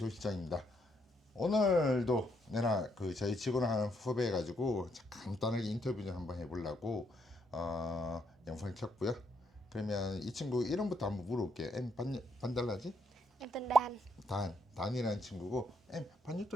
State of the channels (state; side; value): normal; both; correlation 0.74